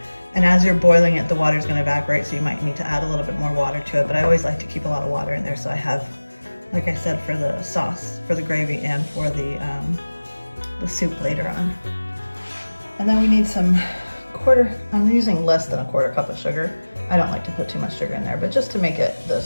And as you're boiling it, the water is going to evaporate, so you might need to add a little bit more water to it. But I always like to keep a lot of water in there, so I have, like I said, for the sauce, for the gravy, and for the soup later on. And then we need some I'm using less than a quarter cup of sugar. I don't like to put too much sugar in there, but just to make it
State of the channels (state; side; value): inverted; both; correlation -1.00